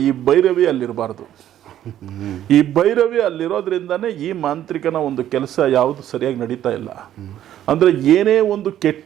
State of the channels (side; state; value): left; quieter; 11.7 dB